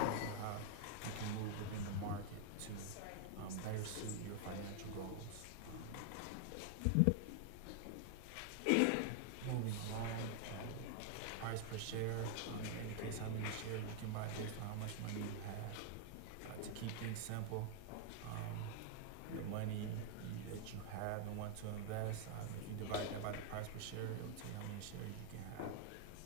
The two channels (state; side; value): different; both; correlation 0.00